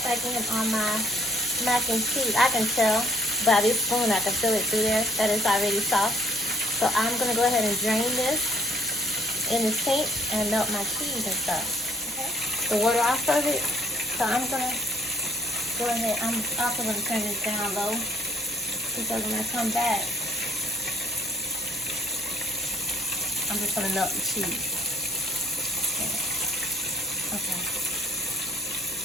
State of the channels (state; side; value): normal; both; correlation 0.63